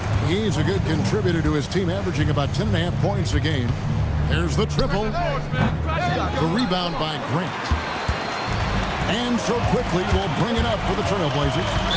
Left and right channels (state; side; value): identical; both; correlation 1.00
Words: He's a good contributor to his team, averaging about 10.5 points a game. There's the triple. The rebound by Grant. And so Quickly will bring it up for the Trailblazers.